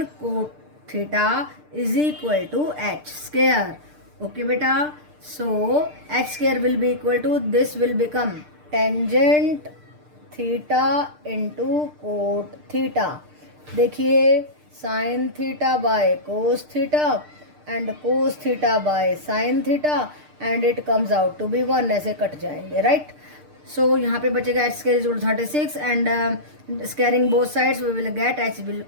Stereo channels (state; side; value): late; left; 6.7 ms